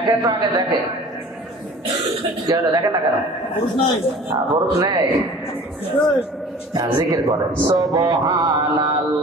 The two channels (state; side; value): normal; both; correlation 0.45